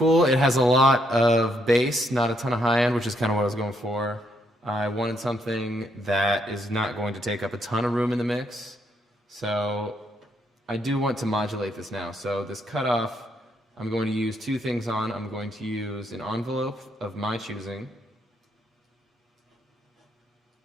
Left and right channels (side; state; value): both; normal; correlation 0.74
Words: it has a lot of bass, not a ton of high end, which is kind of what I was going for. I wanted something that is not going to take up a ton of room in the mix. So I do want to modulate this now. So this cutoff, I'm going to use two things on. I'm going to use an envelope of my choosing